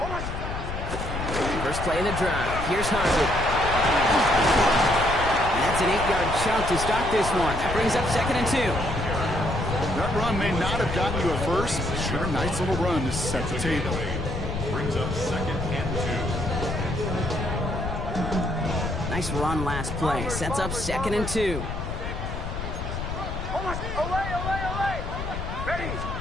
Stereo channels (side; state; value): left; noise; rumble, 5 dB below the sound